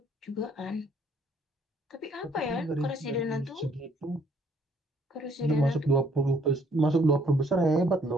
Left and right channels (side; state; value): both; normal; correlation 0.65